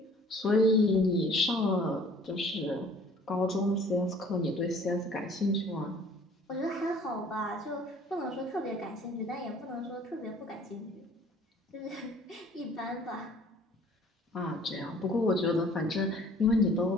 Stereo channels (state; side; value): normal; both; correlation 0.52